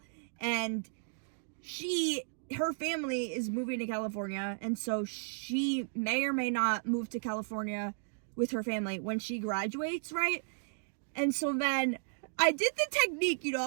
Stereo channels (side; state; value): left; silent; digital silence